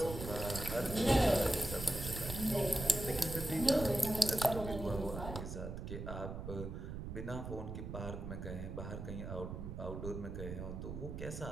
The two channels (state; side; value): noise; right; rumble, 7 dB below the sound